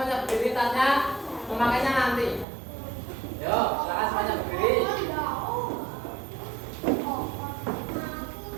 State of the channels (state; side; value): drops out; left; at 2.5 s